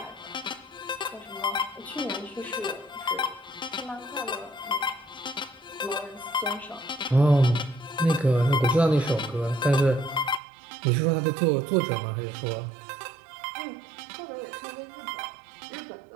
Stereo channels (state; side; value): drops out; left; at 10.4 s